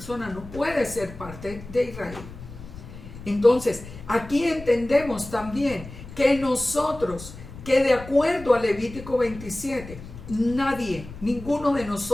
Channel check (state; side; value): noise; left; rumble, 14 dB below the sound